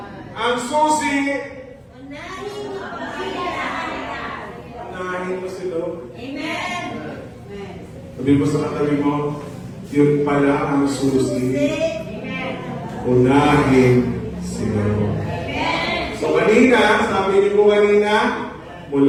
ang susi, unahin mo si Lord. Amen. Sabi mo sa katabi mo, yun pala ang susi. Amen. Unahin si Lord. So kanina, sabi niyo po kanina,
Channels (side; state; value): both; identical; correlation 1.00